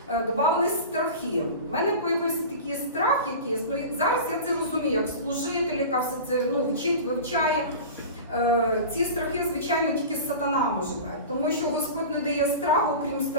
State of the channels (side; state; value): both; inverted; correlation -0.32